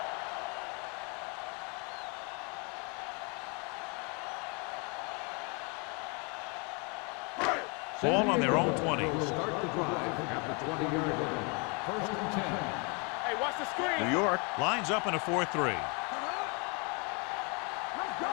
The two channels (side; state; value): right; quieter; 33.1 dB